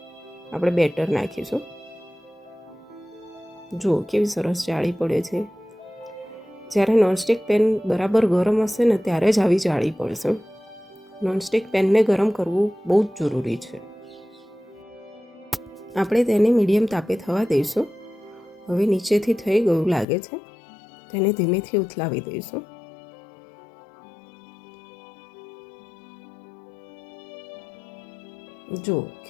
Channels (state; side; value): drops out; right; at 20.1 s